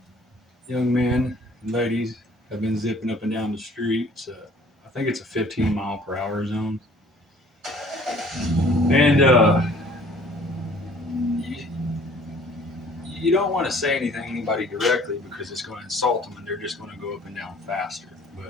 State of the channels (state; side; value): normal; both; correlation 0.54